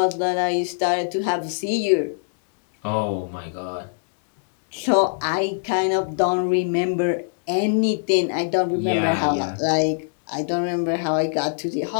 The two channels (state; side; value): silent; right; 64 dB below the other